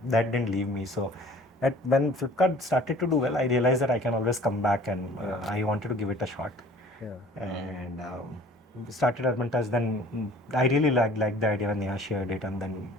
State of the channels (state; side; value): normal; both; correlation 0.49